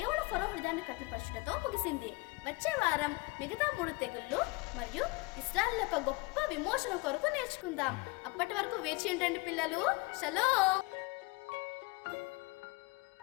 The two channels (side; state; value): right; quieter; 25.3 dB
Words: ఫరో హృదయాన్ని కఠినపరచుటతో ముగిసింది. వచ్చే వారం మిగతా 3 తెగుళ్ళు మరియు ఇశ్రాయేలు యొక్క గొప్ప విమోచన కొరకు నేర్చుకుందాం. అప్పటి వరకు వేచి ఉండండి పిల్లలు. షలోమ్.